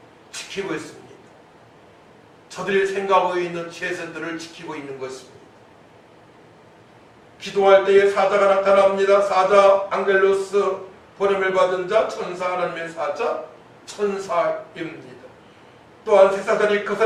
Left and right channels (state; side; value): identical; both; correlation 1.00